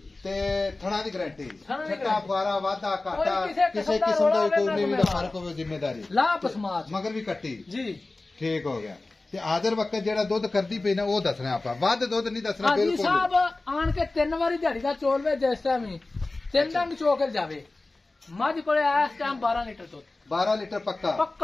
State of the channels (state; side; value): quieter; right; 3.2 dB